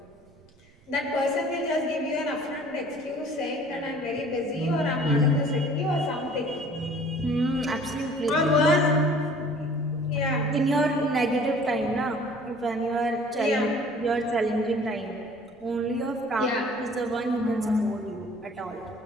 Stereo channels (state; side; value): noise; right; rumble, 29 dB below the sound